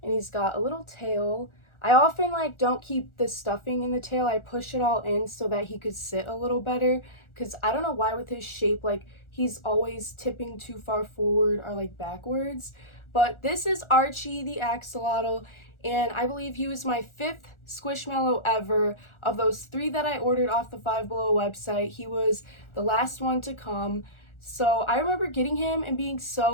and he's got a little tail. I often like don't keep the stuffing in the tail. I push it all in so that he could sit a little better, because I don't know why with his shape, like he's always tipping too far forward or like backwards. But this is Archie the Axolotl, and I believe he was my 5th Squishmallow ever. Of those 3 that I ordered off the Five Below website, he was the last one to come. So I remember getting him and being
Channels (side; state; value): right; late; 1.4 ms